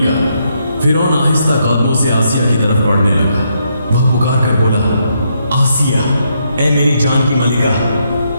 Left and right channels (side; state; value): both; inverted; correlation -0.77